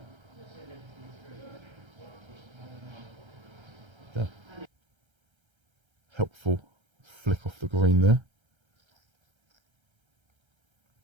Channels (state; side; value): late; left; 1.3 ms